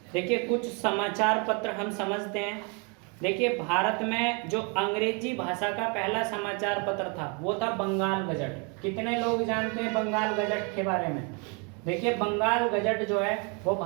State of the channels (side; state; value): left; quieter; 33.9 dB